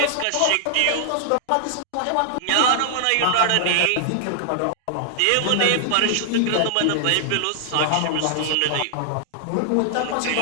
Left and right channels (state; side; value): different; both; correlation -0.01